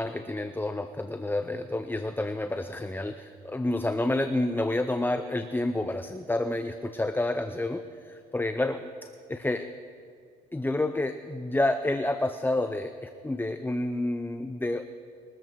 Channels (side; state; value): both; normal; correlation 0.89